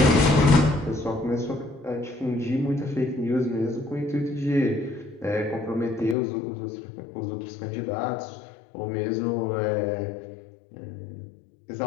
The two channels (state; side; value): drops out; right; at 6.2 s